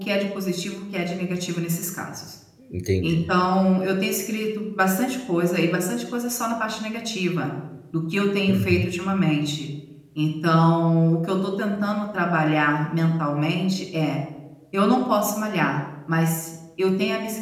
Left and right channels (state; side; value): identical; both; correlation 1.00